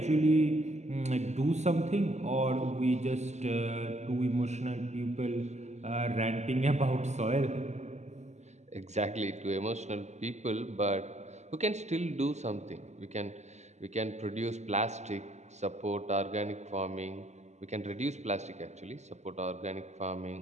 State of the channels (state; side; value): late; left; 0.33 ms